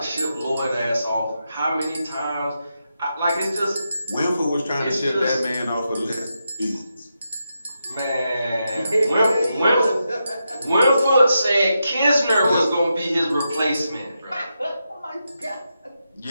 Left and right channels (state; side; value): inverted; both; correlation -0.86